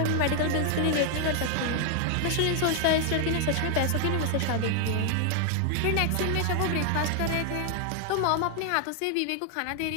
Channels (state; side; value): different; both; correlation 0.00